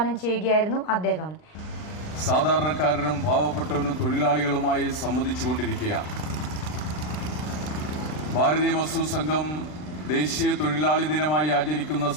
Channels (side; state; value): right; late; 39 ms